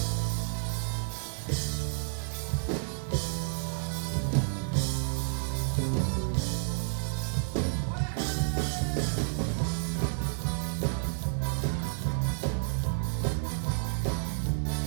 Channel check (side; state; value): left; silent; digital silence